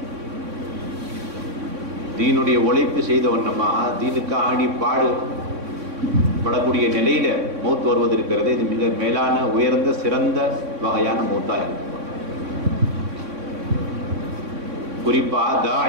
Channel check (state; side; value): late; left; 3.6 ms